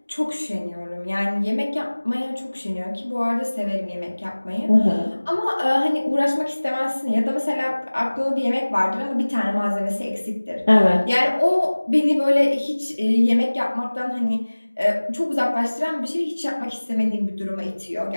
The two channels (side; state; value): both; inverted; correlation -1.00